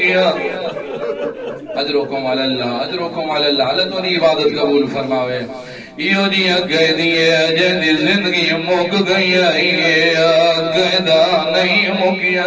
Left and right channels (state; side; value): identical; both; correlation 1.00